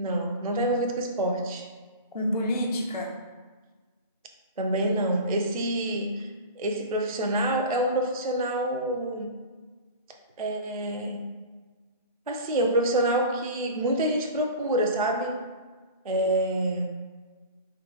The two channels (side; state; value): both; inverted; correlation -0.34